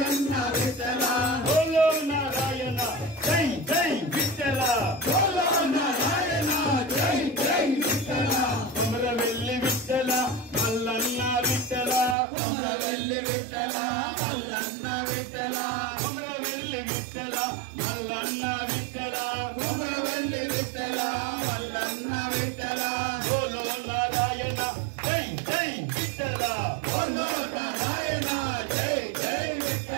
విఠ్ఠల బోలో నారాయణ జై జై విఠ్ఠల బోలో నారాయణ జై జై విఠ్ఠల కొమరవెల్లి విఠ్ఠల మల్లన్న విఠ్ఠల కొమరవెల్లి విఠ్ఠల మల్లన్న విఠ్ఠల కొమరవెల్లి విఠ్ఠల మల్లన్న విఠ్ఠల కొమరవెల్లి విఠ్ఠల మల్లన్న విఠ్ఠల బోలో నారాయణ జై జై విఠ్ఠల బోలో నారాయణ జై జై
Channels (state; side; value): drops out; left; at 12.2 s